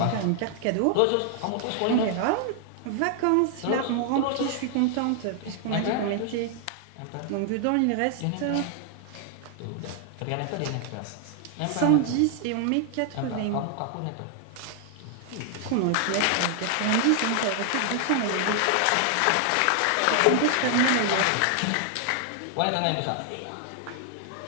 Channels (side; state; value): both; different; correlation 0.00